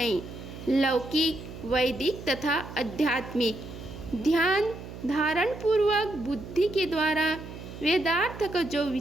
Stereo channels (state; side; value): noise; right; hum, 12 dB below the sound